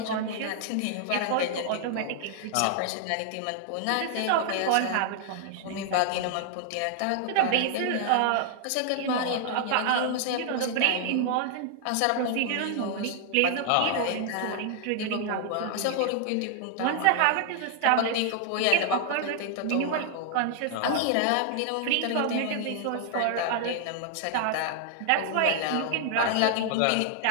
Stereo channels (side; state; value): both; different; correlation -0.01